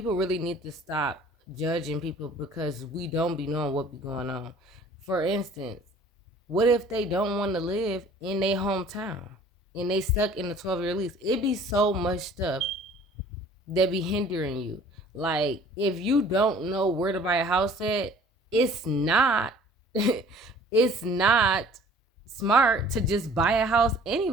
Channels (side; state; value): both; normal; correlation 0.51